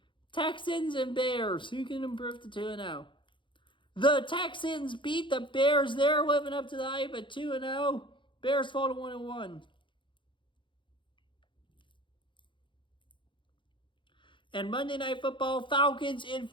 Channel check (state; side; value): late; right; 0.24 ms